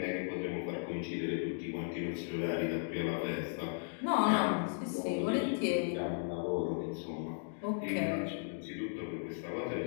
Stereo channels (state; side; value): silent; right; digital silence